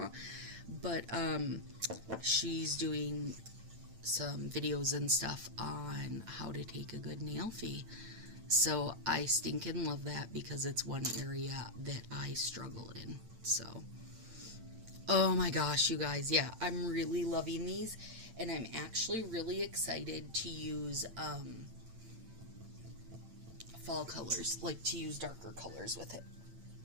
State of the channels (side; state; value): left; late; 8.9 ms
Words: But she's doing some videos and stuff on how to take a good nail fee. So I stinking love that because it's one area that I struggle in. So, oh my gosh, you guys. Yeah, I'm really loving these. And I'm actually really excited to use fall colors. Like to use darker colors with it.